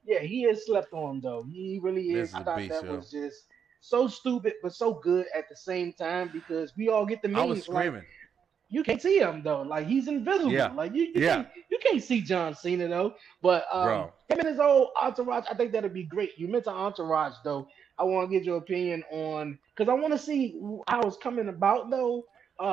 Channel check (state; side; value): quieter; left; 7.4 dB